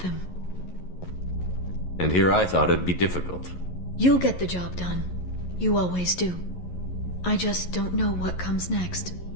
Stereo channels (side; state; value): right; late; 11 ms